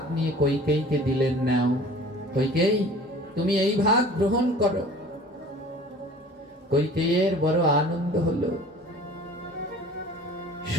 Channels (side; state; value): both; normal; correlation 0.45